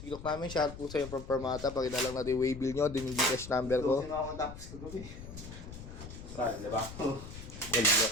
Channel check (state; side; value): noise; left; rumble, 12 dB below the sound